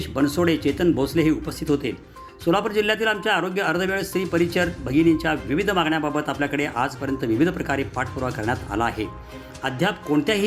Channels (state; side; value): identical; both; correlation 1.00